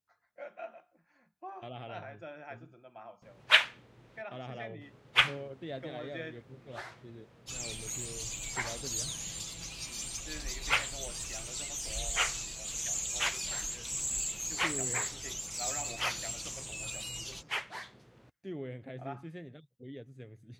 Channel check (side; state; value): both; identical; correlation 1.00